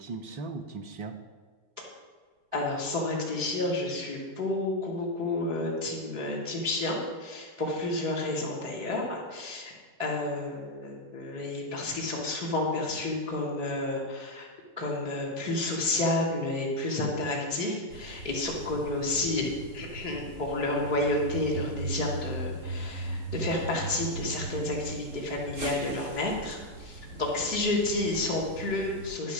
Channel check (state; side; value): late; left; 3.7 ms